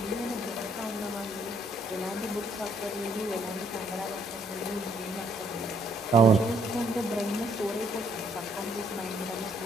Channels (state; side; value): normal; both; correlation 0.68